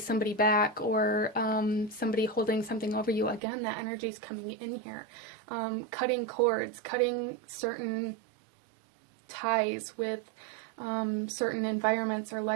back, or somebody holding something over you. Again, that energy is coming in here. Cutting cords, cutting certain ties with certain environments or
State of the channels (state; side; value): drops out; left; at 3.4 s